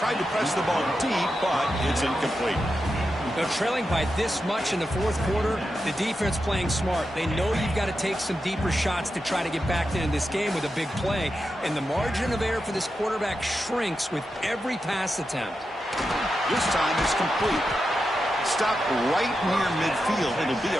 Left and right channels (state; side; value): normal; both; correlation 0.88